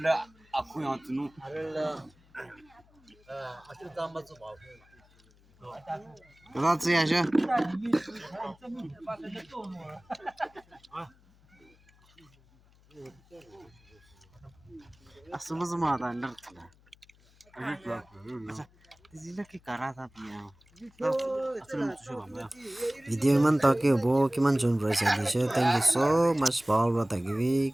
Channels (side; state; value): left; noise; hum, 29 dB below the sound